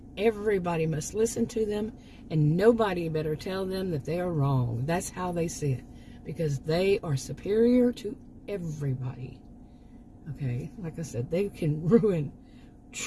everybody must listen to them, and nobody better tell them that they are wrong. That's how they see it, because they are superior to everybody. Okay, like I said, they can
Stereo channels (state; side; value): identical; both; correlation 1.00